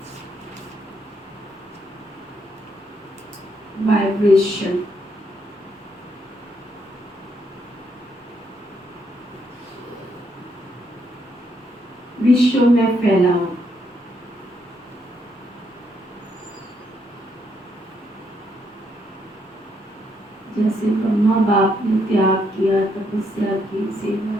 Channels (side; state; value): both; normal; correlation 0.75